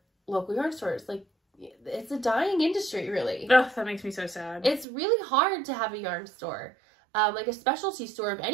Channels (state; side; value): drops out; left; at 4.9 s